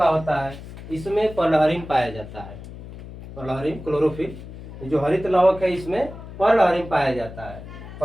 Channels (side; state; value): left; noise; hum, 14 dB below the sound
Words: होता है। इसमें पर्लहरिन पाया जाता है, पर्लहरिन क्लोरोफिल। जो हरित लवक है इसमें पर्लहरिन पाया जाता है।